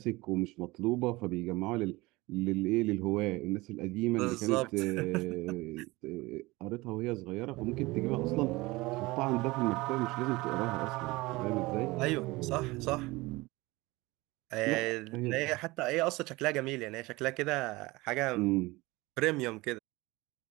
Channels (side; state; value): left; quieter; 21.7 dB